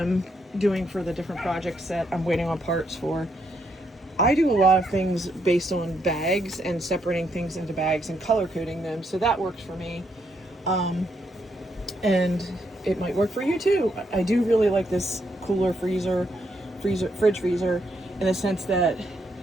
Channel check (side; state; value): both; normal; correlation 0.77